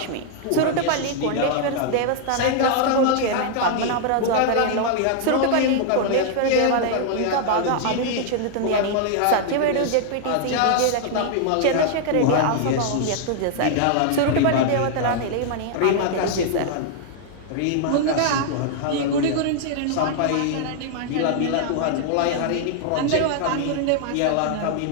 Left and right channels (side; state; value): both; different; correlation -0.01